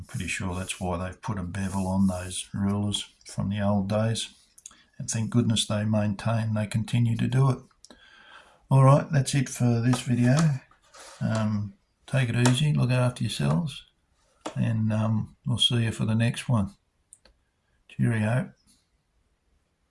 pretty sure that's why they've put a bevel on those rulers from the old days. And thank goodness they continue to do it. Alright, that's it for this video. Take it easy, look after yourselves, and we'll see you for the next one. Cheerio.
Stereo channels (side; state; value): both; identical; correlation 1.00